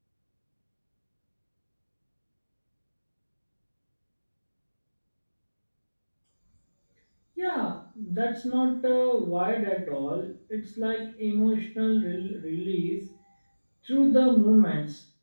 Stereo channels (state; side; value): inverted; both; correlation -1.00